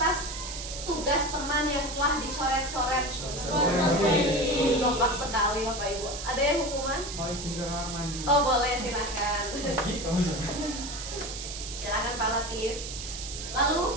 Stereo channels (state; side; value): noise; right; hiss, 8 dB below the sound